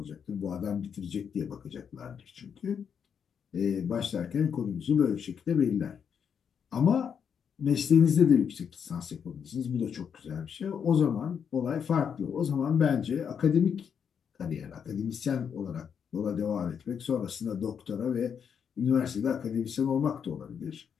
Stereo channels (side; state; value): right; quieter; 7.4 dB